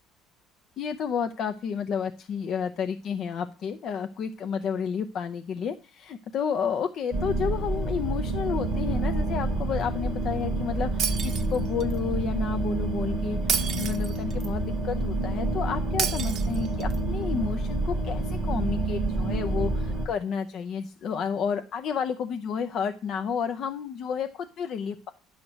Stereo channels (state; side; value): normal; both; correlation 0.62